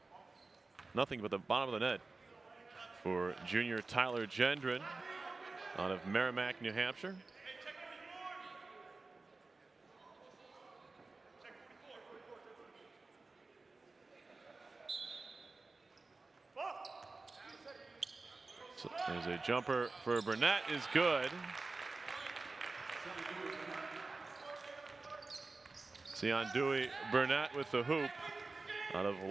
Nothing but the bottom of the net for junior Tyler Gendron out of Merrimack, New Hampshire. So there's a jumper for Burnett, is good. Sion Dewey Burnett with the hoop out of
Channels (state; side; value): quieter; left; 3.6 dB